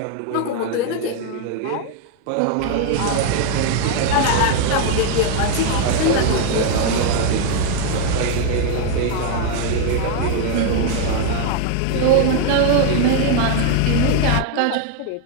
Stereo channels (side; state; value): both; different; correlation 0.00